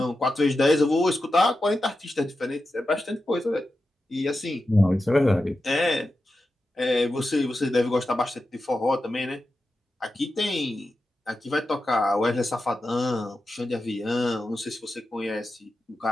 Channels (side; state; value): both; normal; correlation 0.91